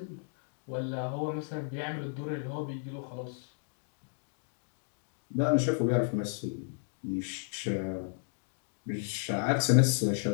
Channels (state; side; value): silent; right; digital silence